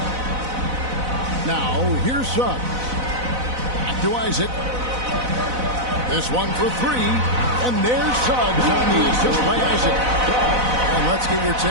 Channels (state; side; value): late; left; 4.0 ms